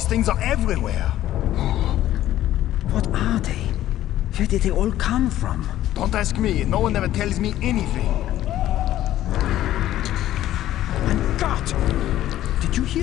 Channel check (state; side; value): quieter; right; 13.3 dB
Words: things are everywhere. What are they? Where did they all come from? Don't ask me, no one ever tells me anything. And God! Did you